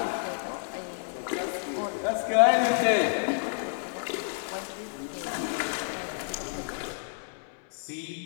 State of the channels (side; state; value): right; silent; 57 dB below the other